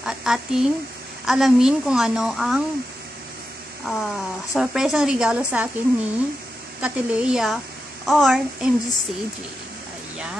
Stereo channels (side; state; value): both; normal; correlation 0.89